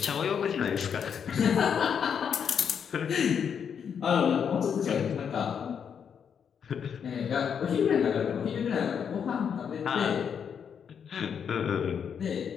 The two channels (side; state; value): right; quieter; 7.4 dB